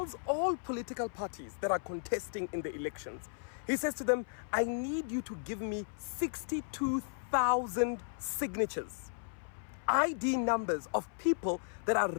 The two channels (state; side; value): silent; right; 54 dB below the other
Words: all political parties that are contesting in the elections, he says to them, I need you to give me 62,000 signatures, ID numbers of people that are